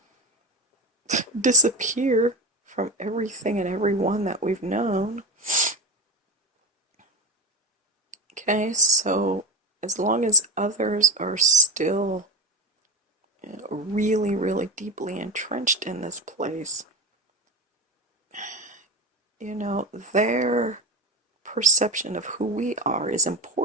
disappear from everything and everyone that we've known. Okay, so as long as others are still really, really deeply entrenched in this place, their perception of who we are is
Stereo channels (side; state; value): both; normal; correlation 0.16